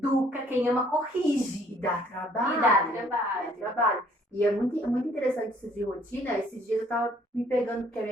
Quem ama, corrige. E dá trabalho. Dá trabalho. E é muito interessante isso de rotina. Esses dias eu tava me pegando, porque a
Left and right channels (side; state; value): both; normal; correlation 0.61